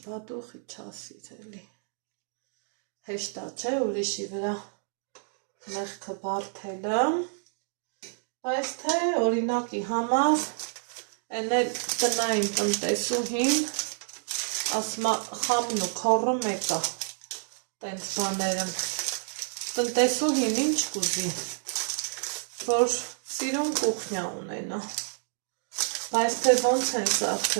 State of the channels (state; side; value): silent; left; digital silence